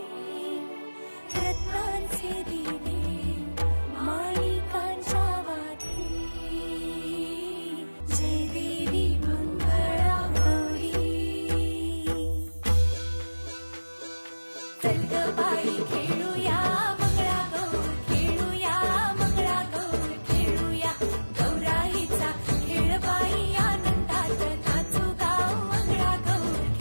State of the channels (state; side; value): inverted; both; correlation -1.00